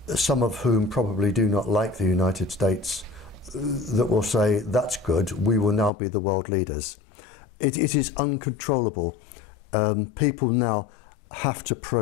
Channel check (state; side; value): drops out; right; at 5.9 s